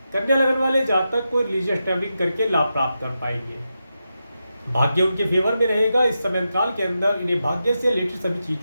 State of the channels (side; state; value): both; inverted; correlation -0.88